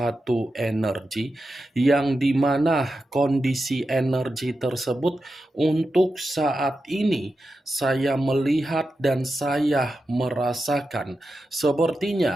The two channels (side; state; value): both; normal; correlation 0.90